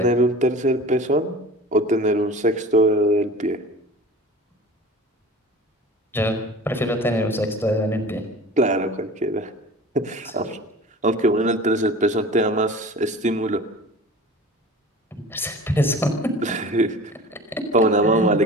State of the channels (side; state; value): both; normal; correlation 0.39